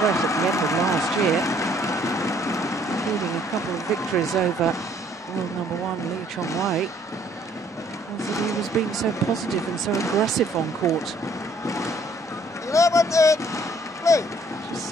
at the end of last year, including a couple of victories over world #1 Lee Chong-wei, was that he was being so positive and so aggressive on court. 11-8, play. Just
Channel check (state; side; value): normal; both; correlation 0.62